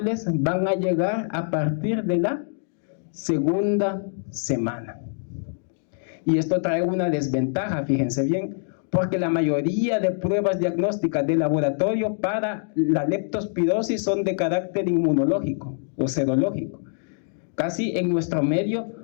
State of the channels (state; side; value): silent; right; digital silence